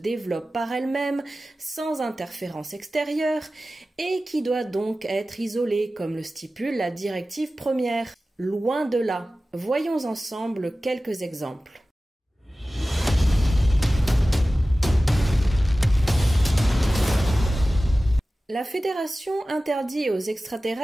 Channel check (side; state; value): both; normal; correlation 0.96